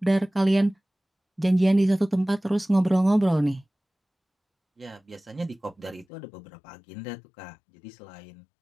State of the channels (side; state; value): right; drops out; at 6.1 s